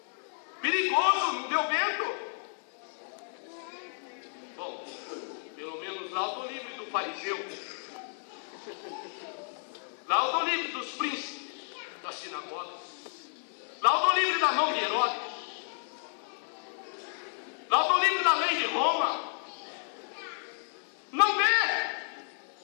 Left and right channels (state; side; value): silent; right; 56 dB below the other